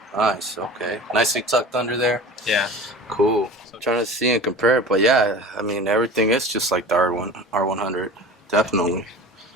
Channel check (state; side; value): normal; both; correlation 0.37